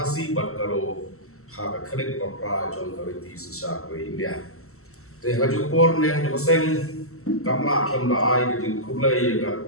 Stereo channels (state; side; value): late; right; 0.63 ms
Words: bat karo ha ka khrek ko pra jong ka ti sa ko India te haju por ne jo seng kamla kham da ai ki kublai ya